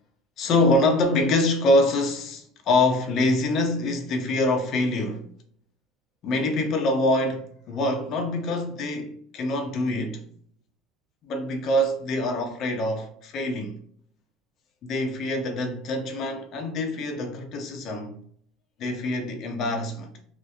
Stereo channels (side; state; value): both; normal; correlation 0.43